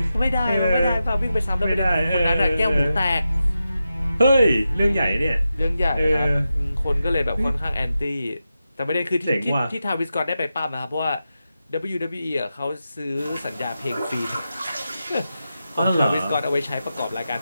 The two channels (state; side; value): inverted; both; correlation -0.90